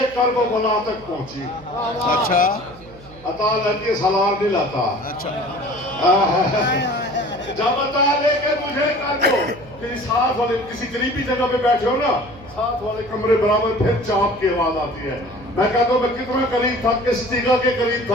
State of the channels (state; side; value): noise; right; hum, 21 dB below the sound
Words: کرب و بلا تک پہنچی. اچھا عطا لے سلار نہیں لاتا. اچھا. جب عطا لے کے مجھے کر دو کہ ساتھ والے کسی قریبی جگہ پہ بیٹھے ہو نا، ساتھ والے کمرے برابر پھر چاپ کی آواز آتی ہے. میں کہتا ہوں میں کتنا قریب تھا، کس جگہ کے قریب